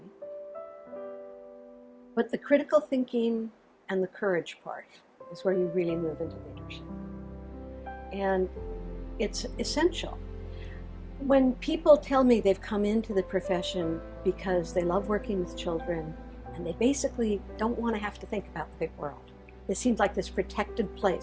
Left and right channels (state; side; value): identical; both; correlation 1.00